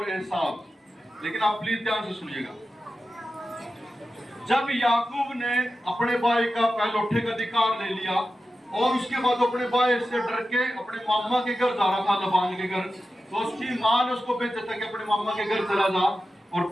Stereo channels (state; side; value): normal; both; correlation 0.92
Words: एसाव। लेकिन आप प्लीज ध्यान से सुनिएगा। जब याकूब ने अपने भाई का पहलौठे का अधिकार ले लिया, और उसके बाद अपने भाई से डर के अपने मामा के घर जा रहा था, लबान के घर, तो उसकी माँ ने उसको भेजा था कि अपने मामा के घर चला जा। और